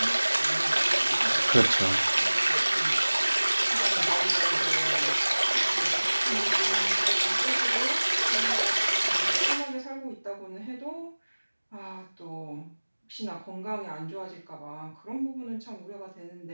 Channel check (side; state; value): both; inverted; correlation -1.00